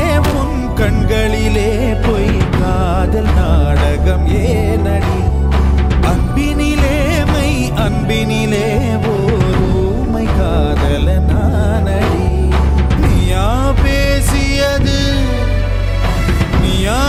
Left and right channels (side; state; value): both; identical; correlation 1.00